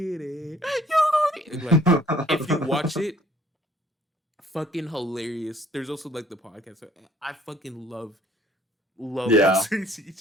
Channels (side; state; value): both; normal; correlation 0.58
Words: it. You gonna need it. Like, if you watch it, fucking hilarious. There's also like the podcast. I fucking love Yeah. Buster